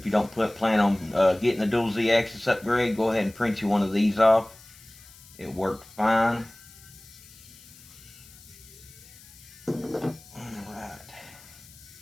you don't plan on getting the dual Z-axis upgrade, go ahead and print you one of these off. It worked fine. Alright.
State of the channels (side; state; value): left; noise; hiss, 22 dB below the sound